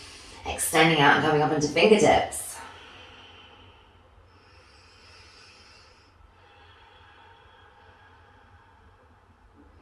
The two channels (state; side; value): identical; both; correlation 1.00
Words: extending out and coming up into fingertips.